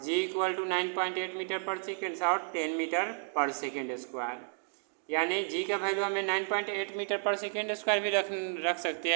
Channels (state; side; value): silent; left; digital silence